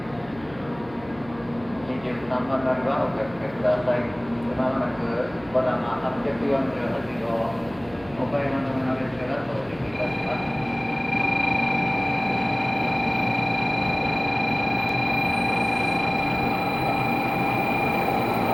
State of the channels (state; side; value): noise; right; hum, 21 dB below the sound